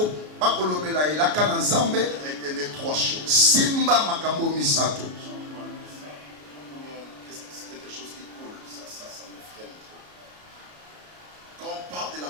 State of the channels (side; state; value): left; late; 33 ms